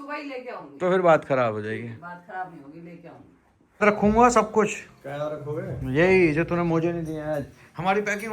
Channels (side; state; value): both; identical; correlation 1.00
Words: ही लेके आऊंगी। तो फिर बात खराब हो जाएगी। बात खराब नहीं होगी, लेके आऊंगी। रखूंगा सब कुछ, क्या रखोगे? यही जो तूने मुझे नहीं दिया आज। हमारी पैकिंग